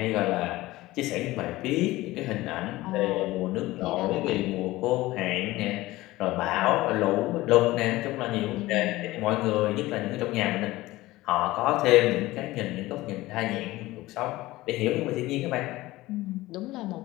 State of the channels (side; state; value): right; quieter; 18.2 dB